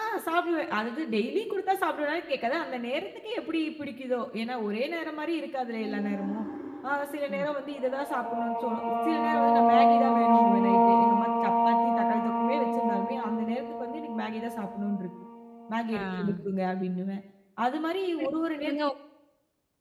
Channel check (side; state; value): both; identical; correlation 1.00